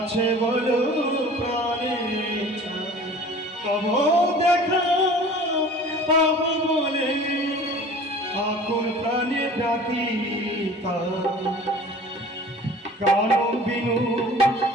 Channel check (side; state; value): both; normal; correlation 0.44